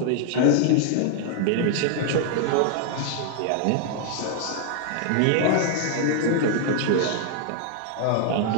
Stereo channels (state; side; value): different; both; correlation 0.00